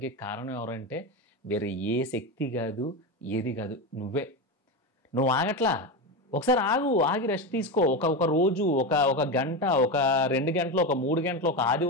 కారణం ఎవరంటే వేరే ఏ శక్తి కాదు, ఏది కాదు, నువ్వే. నువ్వు ఆగట్లా. ఒకసారి ఆగి రెస్ట్ తీసుకో. ఒక రోజు, ఒక గంట, ఒక 2 గంటలు, ఒక 3 గంటలు, ఒక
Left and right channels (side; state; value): both; normal; correlation 0.17